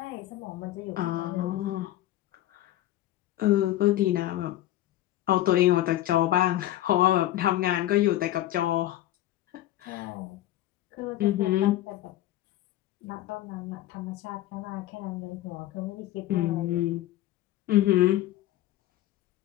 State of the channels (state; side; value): quieter; right; 14.4 dB